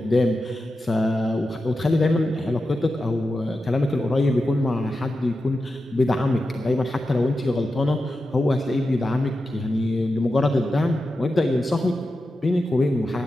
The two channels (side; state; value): both; normal; correlation 0.91